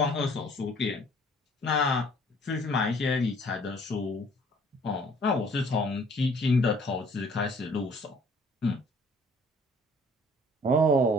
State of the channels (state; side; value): normal; both; correlation 0.56